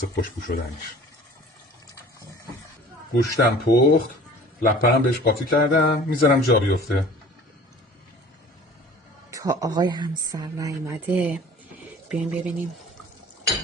خوشبو شدنش. گوشتم پخت، لپنم بهش قاطی کردم، میذارم جا بیفته. تا آقای همسر نیومده بیایم ببینیم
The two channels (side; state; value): both; normal; correlation 0.46